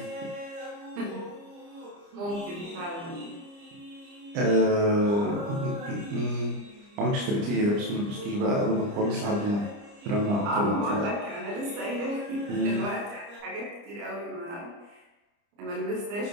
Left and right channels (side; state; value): left; late; 30 ms